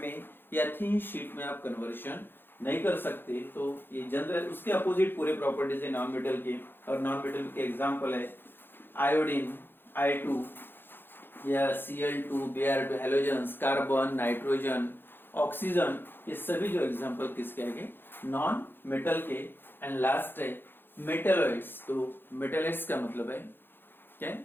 में या थिन शीट में आप कन्वर्शन नहीं कर सकते। तो ये जनरल उसके अपोजिट पूरे प्रॉपर्टीज है नॉन मेटल के, और नॉन मेटल के एग्जांपल है आयोडीन, I2 या Cl2, Br2, halogens, carbon, nitrogen, oxygen, ये सभी जो एग्जांपल किसके आएंगे? नॉन मेटल के। एंड लास्ट है मेटलॉइड्स। तो मेटलॉइड्स का मतलब है क्या?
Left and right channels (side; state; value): right; late; 0.10 ms